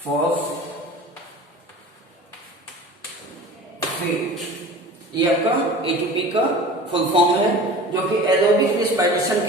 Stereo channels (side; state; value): both; normal; correlation 0.39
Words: ये आपका ATP का फुल फॉर्म है, जो कि एरोबिक रिस्पिरेशन